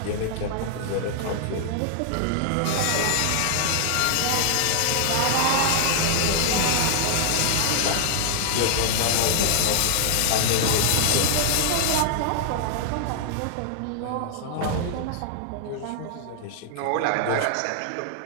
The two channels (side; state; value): both; different; correlation 0.00